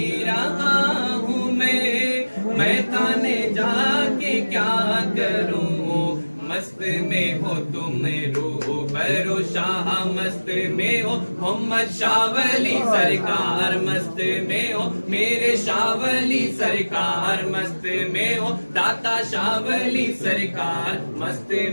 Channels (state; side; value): inverted; both; correlation -1.00